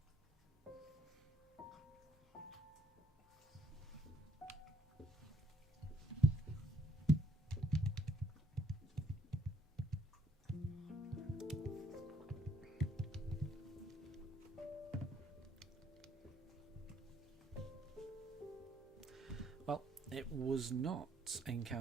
Well, it was not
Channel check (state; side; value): normal; both; correlation 0.70